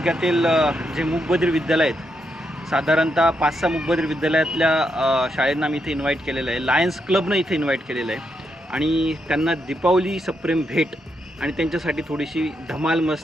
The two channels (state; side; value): normal; both; correlation 0.81